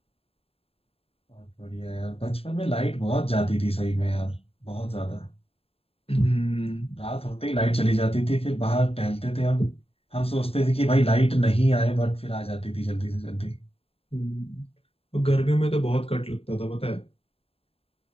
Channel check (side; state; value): right; late; 0.28 ms